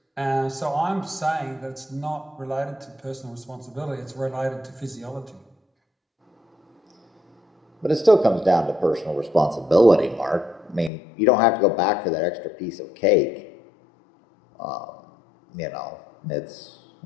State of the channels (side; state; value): right; drops out; at 10.9 s